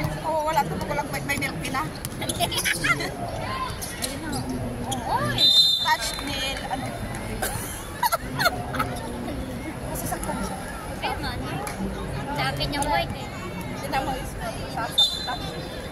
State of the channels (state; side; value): identical; both; correlation 1.00